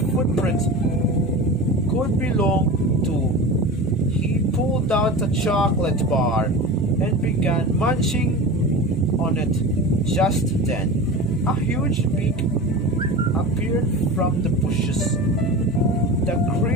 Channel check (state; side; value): normal; both; correlation 0.30